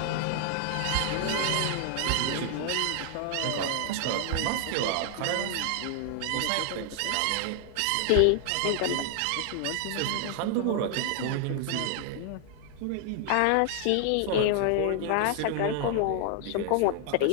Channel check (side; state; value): both; different; correlation 0.00